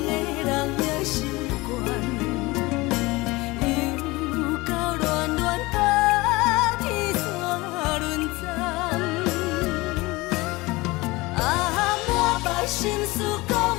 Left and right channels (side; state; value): right; quieter; 22.0 dB